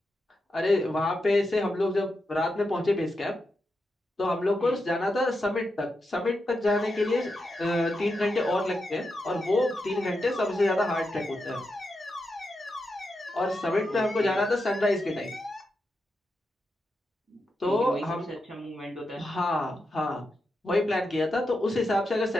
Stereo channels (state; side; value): normal; both; correlation 0.87